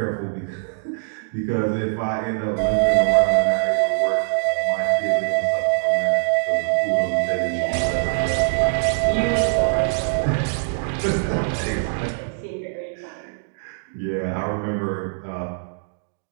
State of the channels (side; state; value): left; silent; digital silence